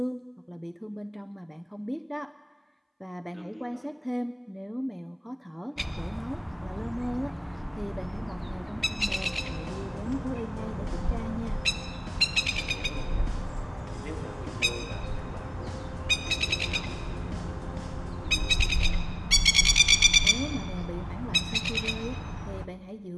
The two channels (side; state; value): both; identical; correlation 1.00